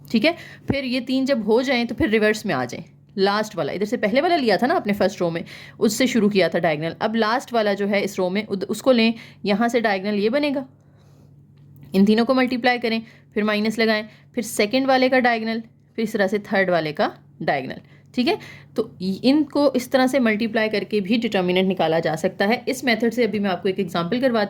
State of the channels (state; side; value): identical; both; correlation 1.00